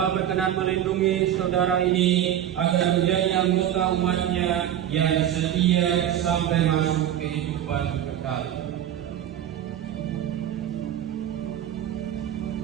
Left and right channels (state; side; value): quieter; left; 10.9 dB